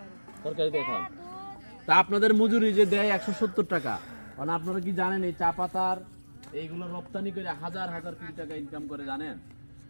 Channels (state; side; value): inverted; both; correlation -1.00